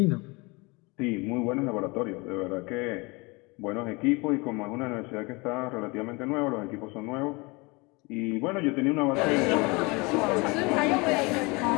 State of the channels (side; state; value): right; quieter; 26.6 dB